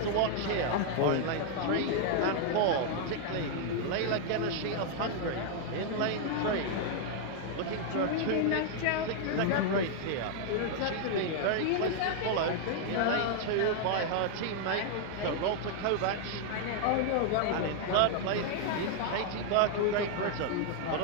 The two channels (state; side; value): different; both; correlation 0.00